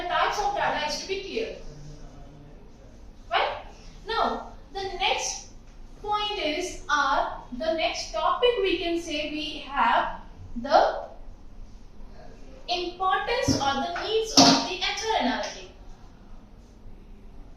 types of data is to be clear. Right? Now, the next point is, the next topic we can say we have the importance or the needs of the HR analytic.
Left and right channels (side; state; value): both; identical; correlation 1.00